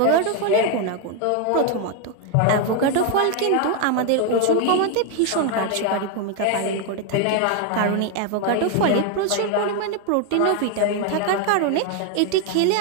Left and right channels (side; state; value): both; different; correlation 0.01